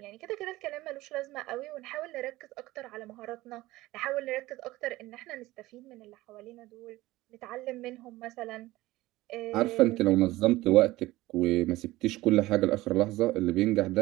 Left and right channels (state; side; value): quieter; left; 18.2 dB